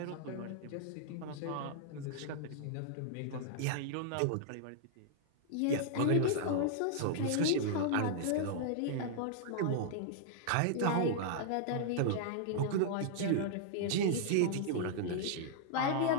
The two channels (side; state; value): both; different; correlation -0.01